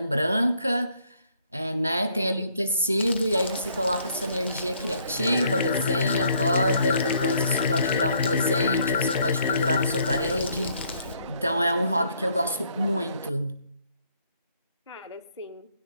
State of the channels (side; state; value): both; inverted; correlation -0.67